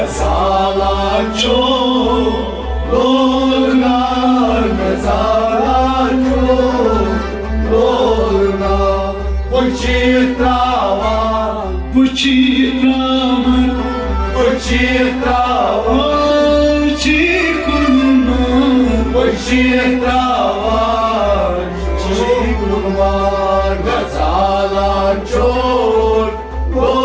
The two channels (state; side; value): identical; both; correlation 1.00